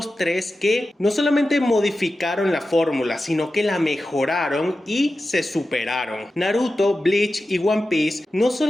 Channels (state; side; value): normal; both; correlation 0.93